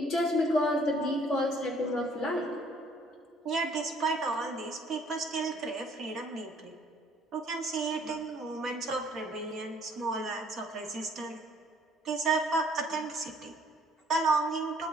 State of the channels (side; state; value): both; normal; correlation 0.60